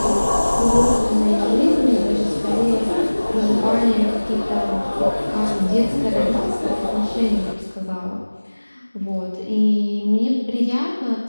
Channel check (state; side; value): inverted; both; correlation -1.00